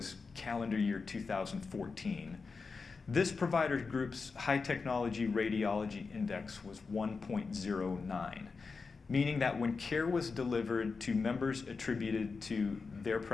calendar year 2014, this provider group's high technology radiology index was 1.09, meaning that when care was delivered to members attributed to their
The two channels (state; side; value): quieter; right; 4.6 dB